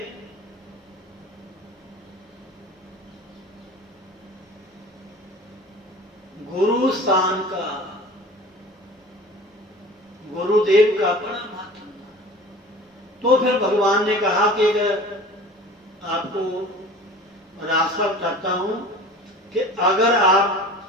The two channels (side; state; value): both; normal; correlation 0.41